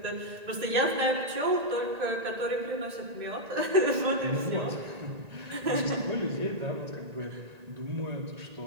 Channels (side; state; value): left; late; 1.8 ms